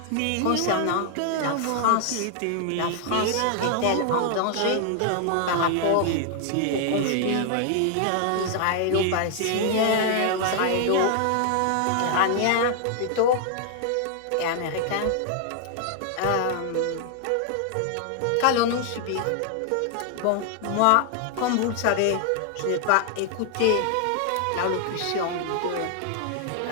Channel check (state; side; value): different; both; correlation 0.00